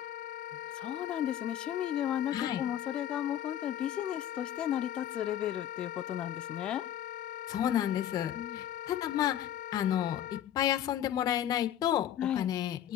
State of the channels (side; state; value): right; quieter; 11.0 dB